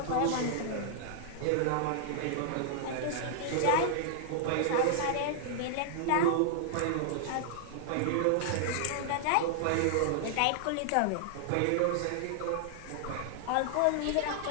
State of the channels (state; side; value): different; both; correlation -0.01